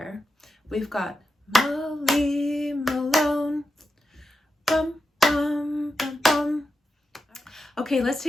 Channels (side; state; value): both; normal; correlation 0.88